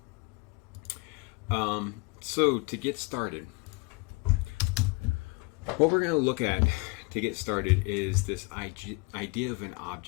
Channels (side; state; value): right; quieter; 26.7 dB